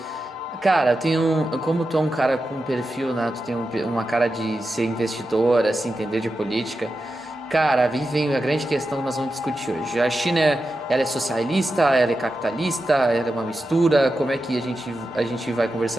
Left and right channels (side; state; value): both; normal; correlation 0.90